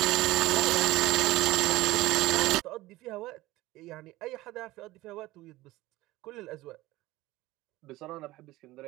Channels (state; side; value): quieter; left; 18.3 dB